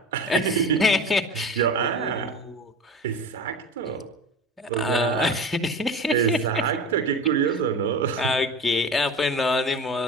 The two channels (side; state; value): both; normal; correlation 0.32